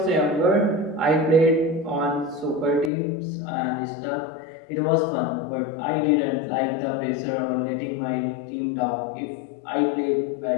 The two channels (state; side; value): drops out; right; at 2.9 s